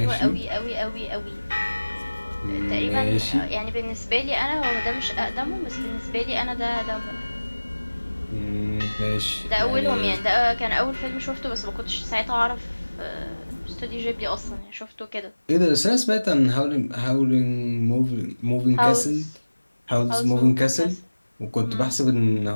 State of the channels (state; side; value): inverted; both; correlation -1.00